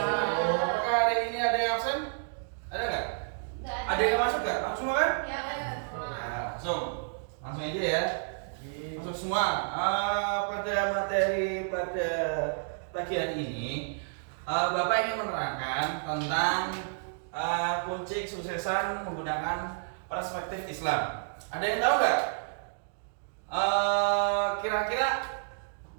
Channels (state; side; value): silent; left; digital silence